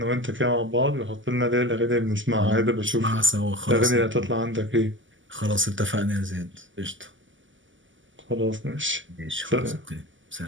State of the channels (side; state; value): left; late; 0.55 ms